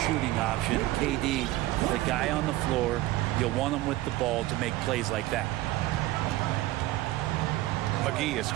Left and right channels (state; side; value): quieter; left; 17.0 dB